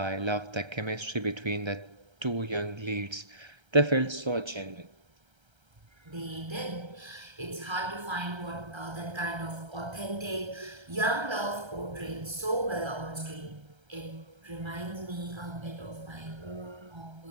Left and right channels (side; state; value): left; late; 1.3 ms